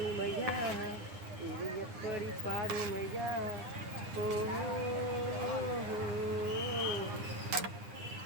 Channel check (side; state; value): left; late; 9.8 ms